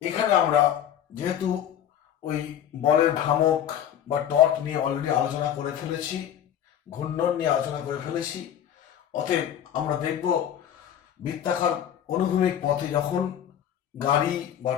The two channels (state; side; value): quieter; right; 10.0 dB